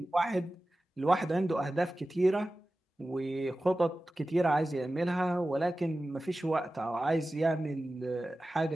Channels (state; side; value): normal; both; correlation 0.95